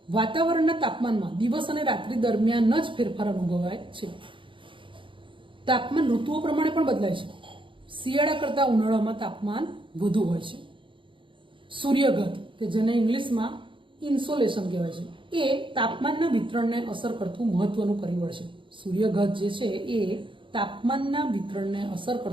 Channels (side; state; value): left; late; 0.24 ms